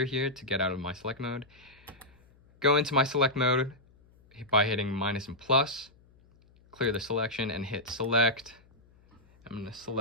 here to get out of my select mode. Go into my select mode by hitting minus and plus. Clear the selection and hit select. I'm going to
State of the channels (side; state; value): left; noise; hum, 29 dB below the sound